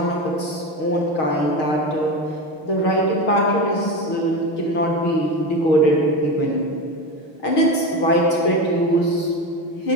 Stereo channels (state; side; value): late; right; 6.4 ms